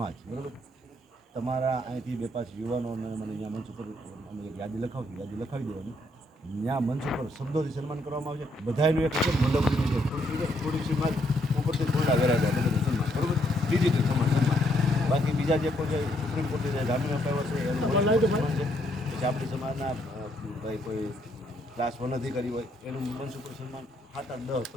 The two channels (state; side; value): normal; both; correlation 0.72